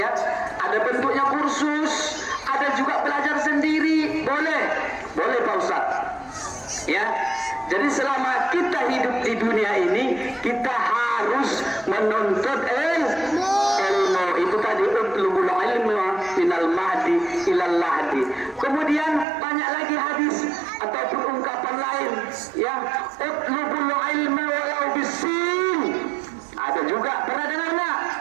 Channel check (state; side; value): drops out; left; at 19.2 s